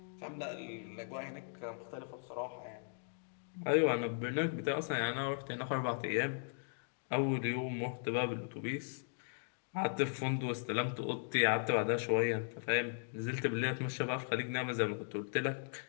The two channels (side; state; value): right; silent; digital silence